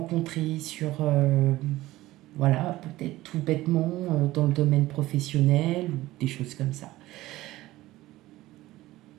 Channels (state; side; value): quieter; left; 17.1 dB